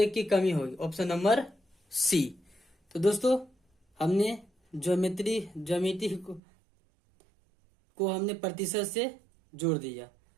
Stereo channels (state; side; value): drops out; left; at 6.4 s